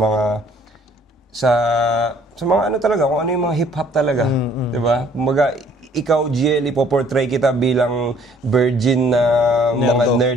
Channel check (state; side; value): normal; both; correlation 0.59